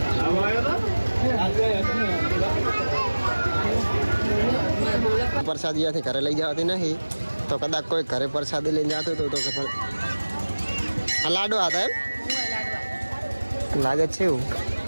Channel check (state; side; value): inverted; both; correlation -1.00